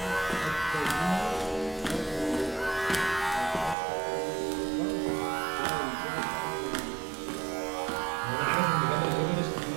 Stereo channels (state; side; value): drops out; left; at 3.8 s